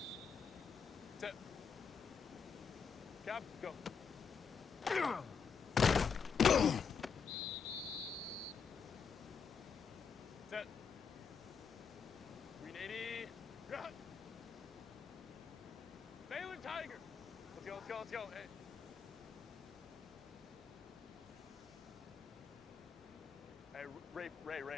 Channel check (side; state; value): right; quieter; 6.2 dB